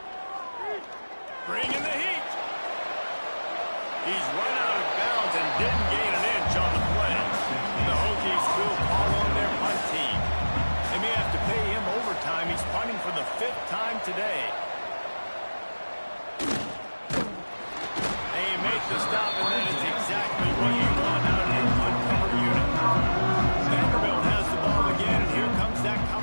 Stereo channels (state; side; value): inverted; both; correlation -1.00